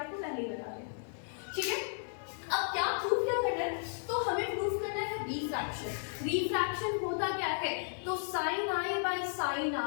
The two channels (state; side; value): silent; right; 55 dB below the other